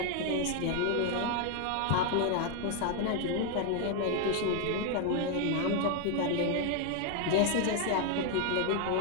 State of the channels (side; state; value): both; different; correlation 0.00